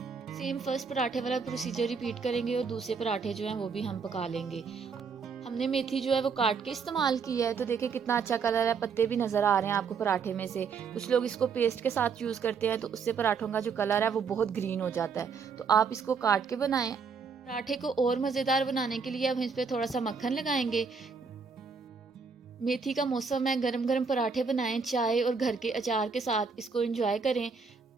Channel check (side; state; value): left; quieter; 5.5 dB